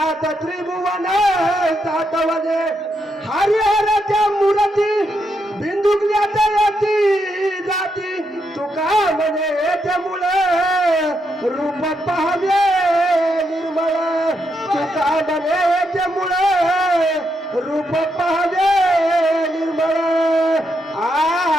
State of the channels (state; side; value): normal; both; correlation 0.80